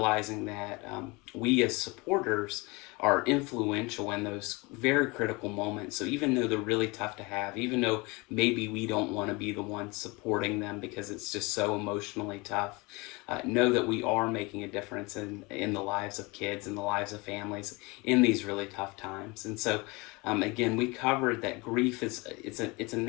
that we as supporters are influential in those very critical moments. So even though they're really tough to have, even though maybe we don't want to be the ones supporting them because it's just so emotionally tough, know that we are making a difference in the lives of kids and the lives of families in these really tough times. And so again, we covered that grief it's a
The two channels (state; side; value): quieter; right; 25.8 dB